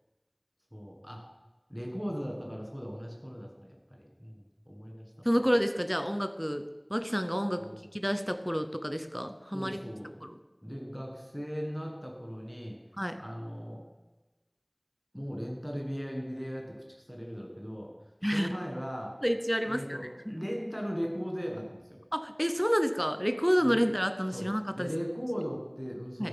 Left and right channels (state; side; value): identical; both; correlation 1.00